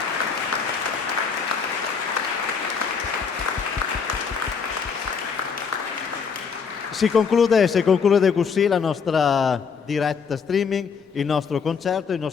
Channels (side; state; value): right; quieter; 5.9 dB